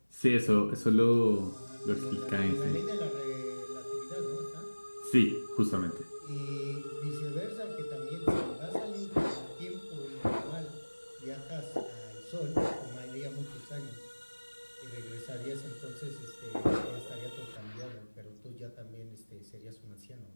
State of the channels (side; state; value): both; inverted; correlation -1.00